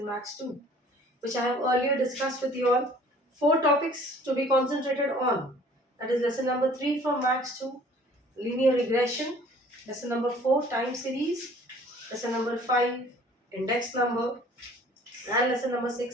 Maths 2, which I have earlier discussed with you all. Four topics to be concentrated on. That is lesson number 3 from Maths 2, linear regression. Lesson number 4, time series. Lesson number 5, index number. And lesson number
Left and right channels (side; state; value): both; normal; correlation 0.52